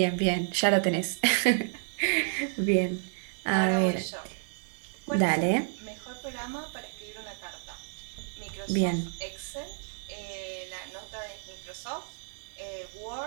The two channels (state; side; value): silent; left; digital silence